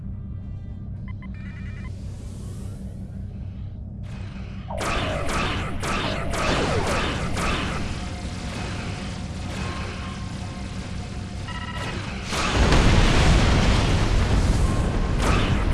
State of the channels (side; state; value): both; identical; correlation 1.00